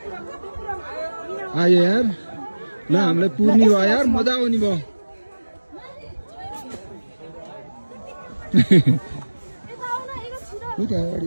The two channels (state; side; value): inverted; both; correlation -1.00